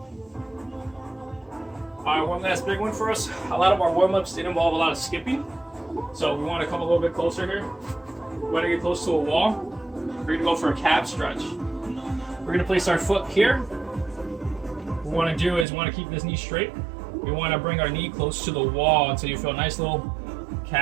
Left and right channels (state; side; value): drops out; left; at 15.7 s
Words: All right, one last big one for us. A lot of our warm-ups did involve a lot of skipping. So we want to come a little bit closer here. We want to get close to a wall. We're going to go for a calf stretch. We're going to place our foot here. What we want to do is we want to keep this knee straight. We want to bring our knee close to the wall until you feel a nice little